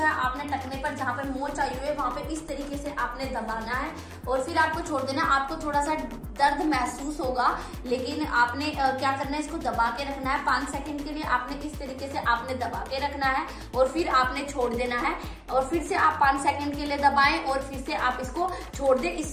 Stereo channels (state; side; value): identical; both; correlation 1.00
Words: आपने टखने पर जहाँ पे मोच आई हुई है वहां पे इस तरीके से आपने दबाना है और फिर आपको छोड़ देना। आपको थोड़ा सा दर्द महसूस होगा लेकिन आपने क्या करना है, इसको दबा के रखना है 5 सेकंड के लिए। आपने इस तरीके से आपने दबा के रखना है और फिर आपने छोड़ देना है और फिर से आप 5 सेकंड के लिए दबाएं और फिर से आप इसको छोड़ दें।